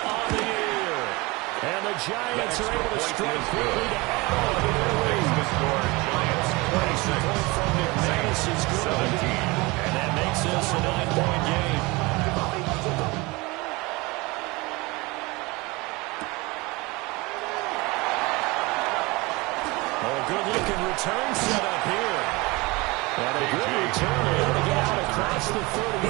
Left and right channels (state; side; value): quieter; left; 24.1 dB